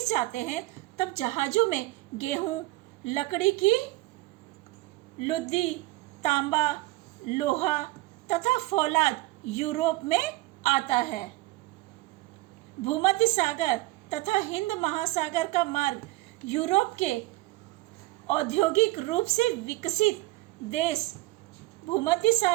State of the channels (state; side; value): quieter; left; 20.3 dB